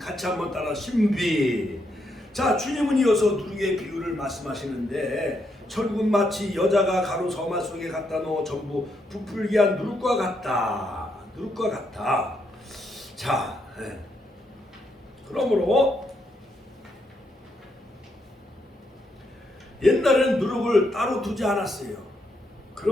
한번 따라 신비. 자, 주님은 이어서 누룩의 비유를 말씀하시는데 천국은 마치 여자가 가루 서말 속에 갖다 넣어 전부 부풀게 한 누룩과 같다. 누룩과 같다. 자, 그러므로 옛날에는 누룩을 따로 두지 않았어요.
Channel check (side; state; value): both; normal; correlation 0.78